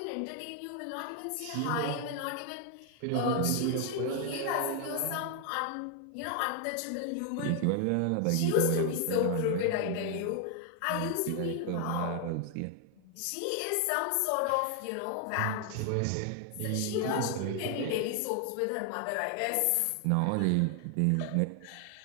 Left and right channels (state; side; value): different; both; correlation 0.00